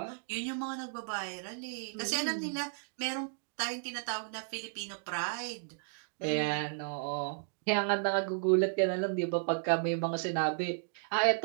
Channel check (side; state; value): left; silent; digital silence